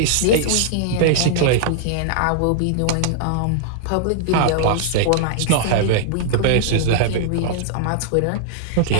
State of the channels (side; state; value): both; different; correlation -0.01